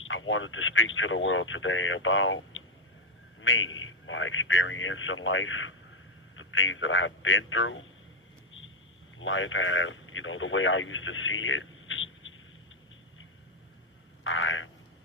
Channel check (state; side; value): normal; both; correlation 0.02